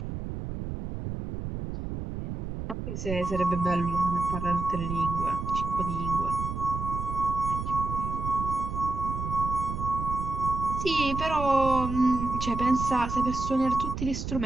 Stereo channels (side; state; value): right; noise; rumble, 6 dB below the sound